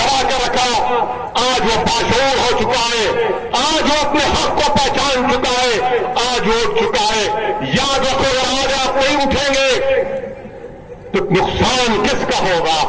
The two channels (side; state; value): both; identical; correlation 1.00